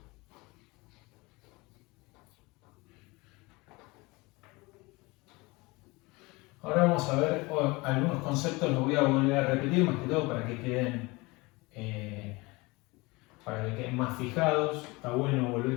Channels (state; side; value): quieter; right; 24.0 dB